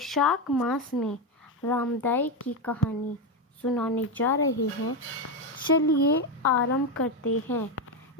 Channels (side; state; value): both; normal; correlation 0.11